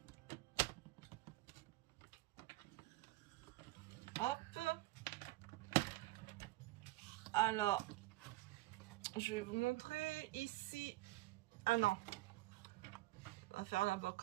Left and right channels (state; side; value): quieter; left; 18.7 dB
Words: Hop. Alors, je vais vous montrer ici. Ah non. On va faire d'abord